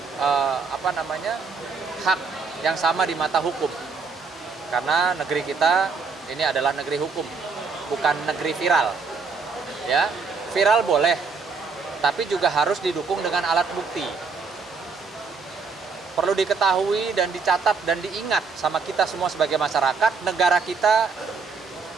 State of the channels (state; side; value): quieter; left; 4.9 dB